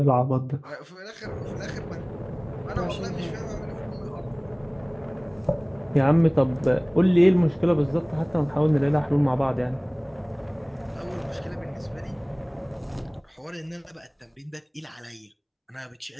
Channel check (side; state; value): both; identical; correlation 1.00